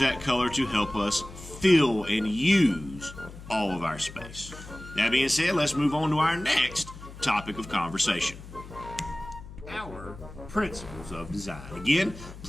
color to help us fill and use all of our space. That being said, let's move on to our next topic of conversation. Our principles of design. Again,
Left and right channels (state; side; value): noise; left; hum, 15 dB below the sound